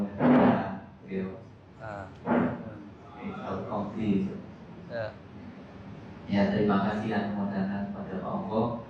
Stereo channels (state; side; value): identical; both; correlation 1.00